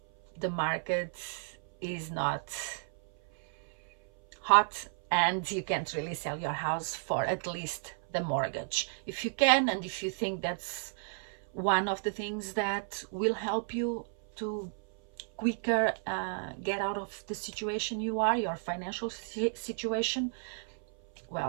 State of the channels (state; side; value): silent; left; 56 dB below the other